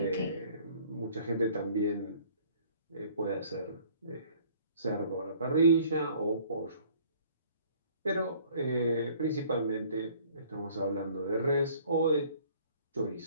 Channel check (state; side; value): inverted; both; correlation -0.55